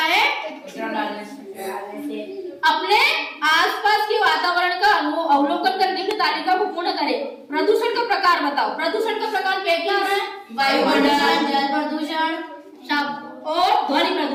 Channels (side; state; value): both; identical; correlation 1.00